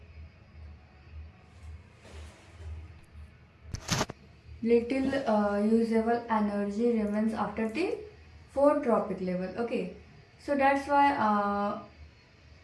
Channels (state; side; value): identical; both; correlation 1.00